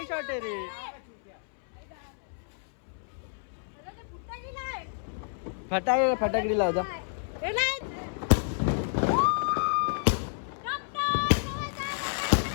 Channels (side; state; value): right; silent; 58 dB below the other